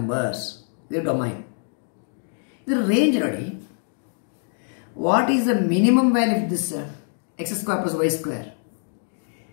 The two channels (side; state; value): right; silent; 62 dB below the other